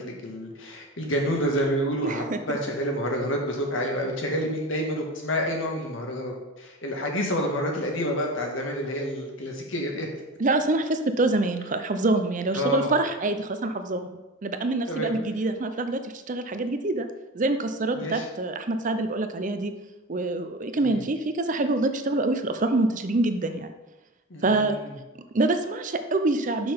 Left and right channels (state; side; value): normal; both; correlation 0.30